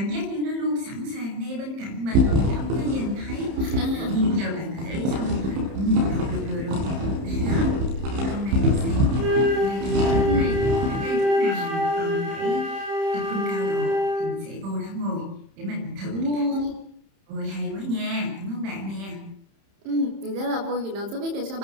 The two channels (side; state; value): left; late; 30 ms